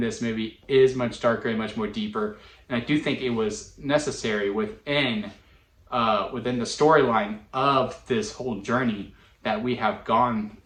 movie is much darker and much more deeper. And I do think it was necessary within the storyline of this whole journey that we have gone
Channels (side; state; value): both; identical; correlation 1.00